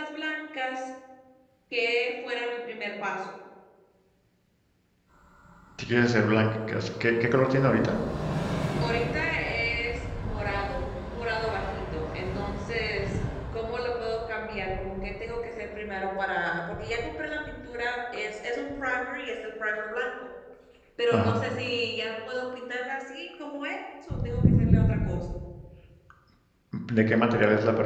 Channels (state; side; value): identical; both; correlation 1.00